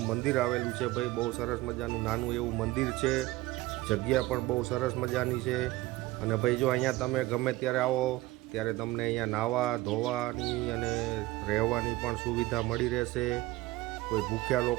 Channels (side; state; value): left; quieter; 18.7 dB